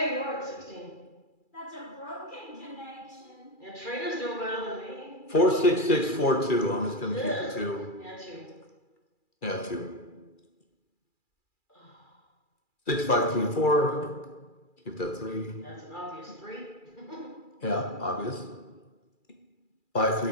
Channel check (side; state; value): right; late; 2.4 ms